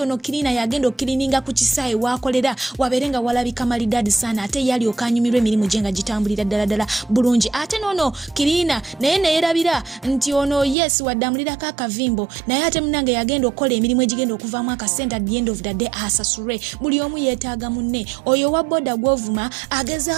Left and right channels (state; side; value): drops out; left; at 10.8 s